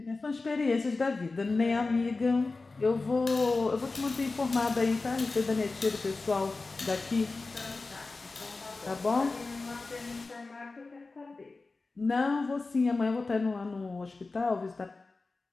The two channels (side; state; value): right; quieter; 3.7 dB